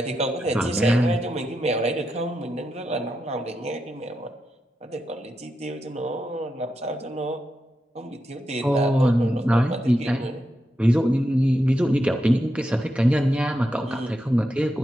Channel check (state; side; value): normal; both; correlation 0.86